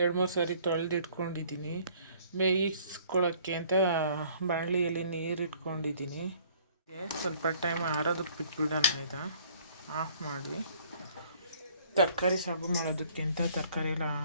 ಸಾರಿ ತೊಳೆದಿಟ್ಕೊಂಡಿದ್ದೀನಿ. ಬೇಯಿಸ್ಕೊಳ್ಳೋಕ್ಕೆ ಅಂತ ಬಾಣಲಿಯಲ್ಲಿ ನೀರು ಇಟ್ಕೊಂಡಿದ್ದೀನಿ. ಸ್ವಲ್ಪ ಟೈಮ್ ಆರೋದಕ್ಕೆ ಬಿಟ್ಬಿಡೋಣ. ಆಯಿತಾ, ಆಫ್ ಮಾಡಿ ತರಕಾರಿ ಸಾಗು ಮಾಡೋದಕ್ಕೆ ಅಂತ ತರಕಾರಿ ಎಲ್ಲ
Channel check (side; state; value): both; inverted; correlation -0.57